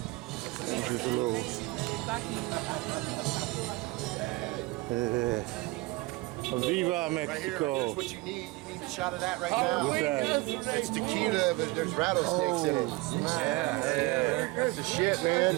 It's just a little. Viva Mexico! Right here, here's what you need. You need a shot of that right now. What's that? It's tequila, but there's rattlesnakes in it. Yeah, man. That's the shit, man.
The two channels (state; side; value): quieter; left; 21.7 dB